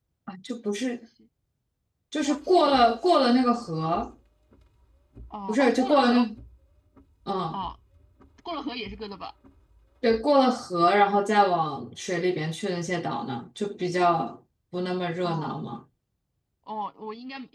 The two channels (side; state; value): both; identical; correlation 1.00